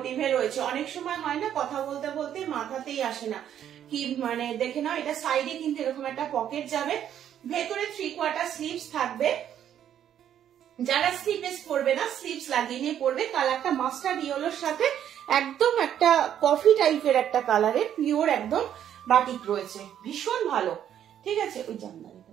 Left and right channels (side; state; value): left; quieter; 10.1 dB